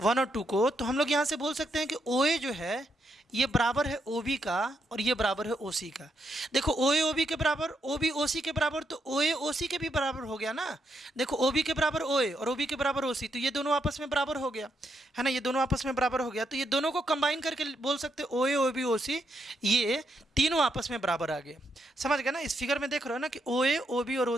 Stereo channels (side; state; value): both; normal; correlation 0.79